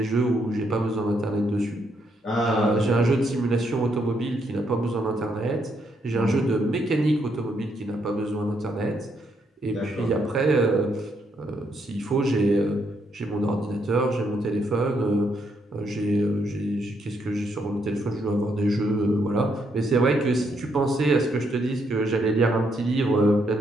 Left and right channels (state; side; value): normal; both; correlation 0.76